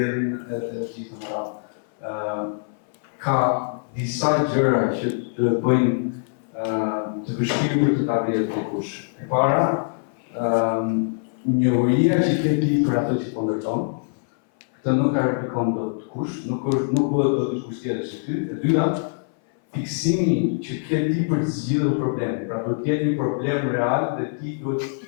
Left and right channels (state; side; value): silent; right; 59 dB below the other